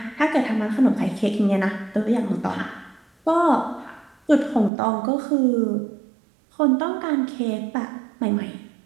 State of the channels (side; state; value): left; drops out; at 4.7 s